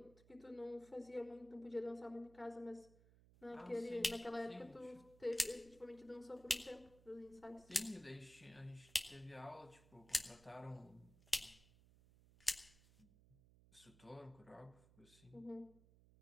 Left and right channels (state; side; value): noise; right; hum, 23 dB below the sound